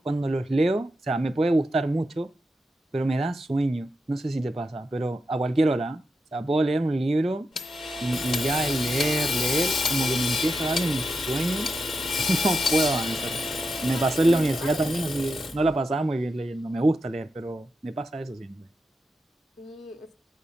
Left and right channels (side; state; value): both; normal; correlation 0.87